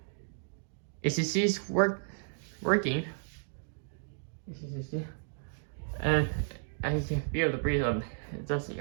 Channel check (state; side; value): silent; left; digital silence